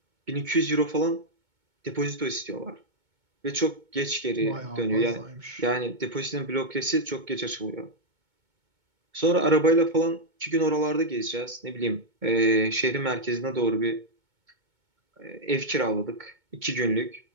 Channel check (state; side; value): late; left; 2.2 ms